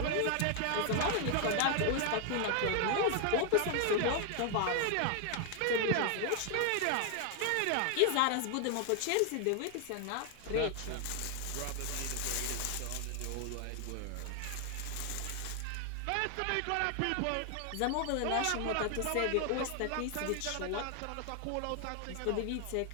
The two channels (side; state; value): both; different; correlation 0.00